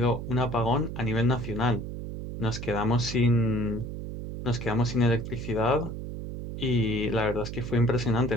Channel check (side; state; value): right; noise; hum, 7 dB below the sound